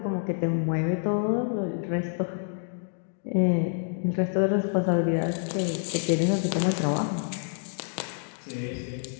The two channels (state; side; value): silent; right; digital silence